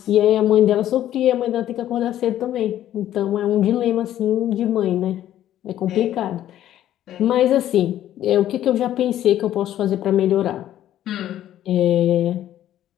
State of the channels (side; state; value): right; quieter; 12.2 dB